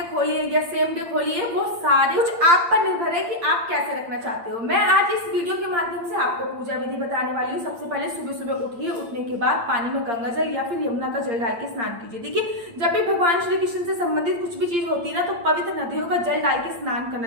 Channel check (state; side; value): late; left; 8.7 ms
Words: खोलिए या सेम डे खोलिए, वो सारे कुछ आप पर निर्भर है कि आप कैसे रखना चाहते हो। मैं आज इस वीडियो के माध्यम से आपको पूजा विधि बताने वाली हूँ। सबसे पहले सुबह सुबह उठिए, उठने के बाद पानी में गंगा जल या फिर यमुना का जल डाल के स्नान कीजिए। देखिए, जब भी भगवान श्री कृष्ण से संबंधित कुछ भी चीज होती है ना, तो पवित्र नदियों का जल डाल के स्नान